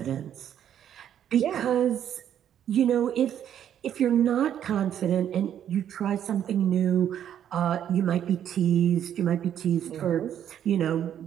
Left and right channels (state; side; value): quieter; left; 10.0 dB